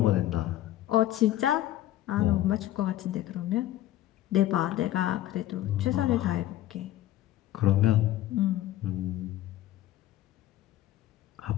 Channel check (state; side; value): quieter; right; 14.0 dB